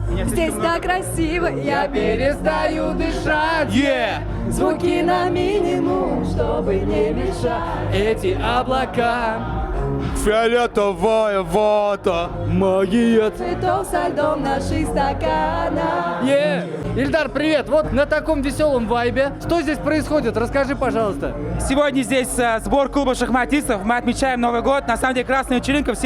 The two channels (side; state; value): both; identical; correlation 1.00